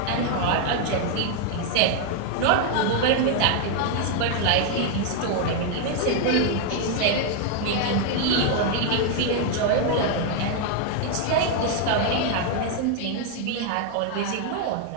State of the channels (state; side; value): different; both; correlation 0.00